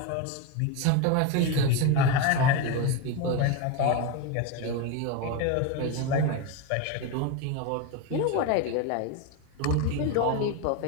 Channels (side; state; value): both; different; correlation 0.04